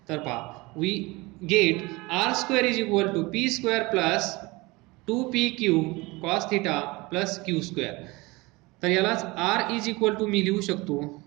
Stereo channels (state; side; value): quieter; left; 23.4 dB